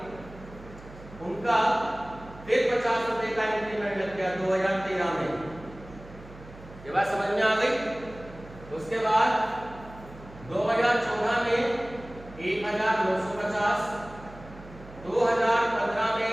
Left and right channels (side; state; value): right; noise; hum, 18 dB below the sound